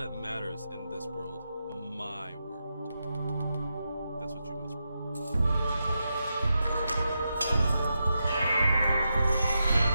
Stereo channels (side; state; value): both; inverted; correlation -0.87